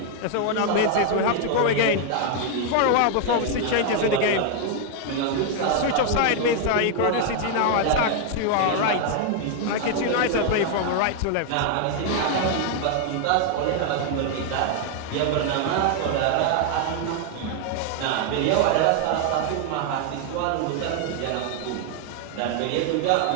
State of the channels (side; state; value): both; different; correlation 0.00